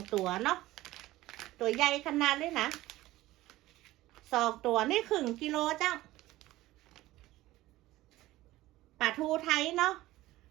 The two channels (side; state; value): left; quieter; 16.9 dB